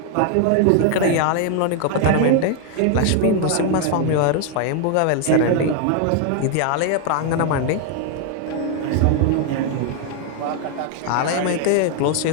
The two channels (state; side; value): different; both; correlation 0.00